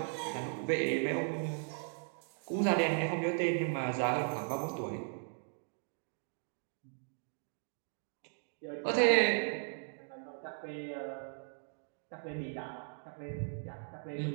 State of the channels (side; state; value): left; silent; 53 dB below the other